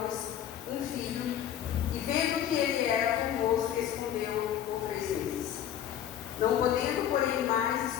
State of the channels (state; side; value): quieter; right; 10.2 dB